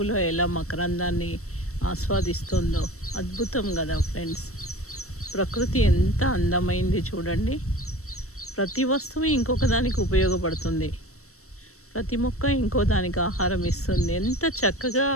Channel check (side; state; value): right; late; 0.64 ms